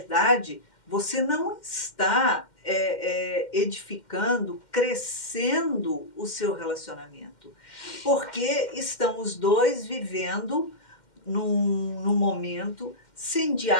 você não está edificando, crescendo o seu relacionamento. Porque estão os dois vivendo num momento sem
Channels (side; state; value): right; late; 2.1 ms